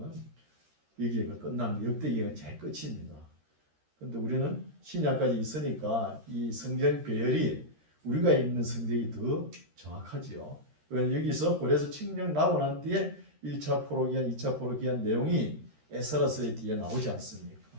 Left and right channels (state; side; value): late; left; 13 ms